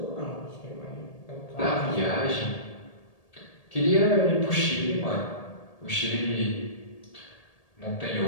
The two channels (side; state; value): right; late; 1.8 ms